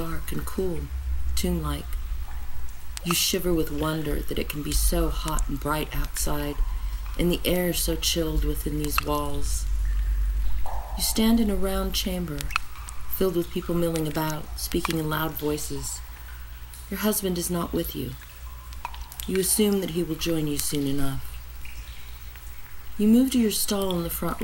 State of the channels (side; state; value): both; identical; correlation 1.00